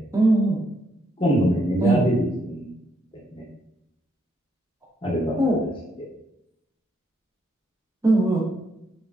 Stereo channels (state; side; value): normal; both; correlation 0.76